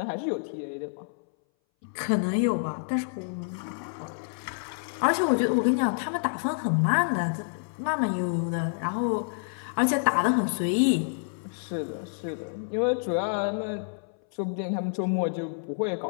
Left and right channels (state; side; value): silent; right; 59 dB below the other